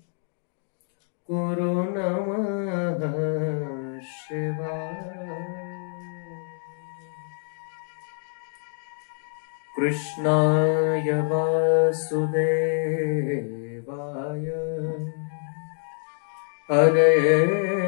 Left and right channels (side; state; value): right; silent; digital silence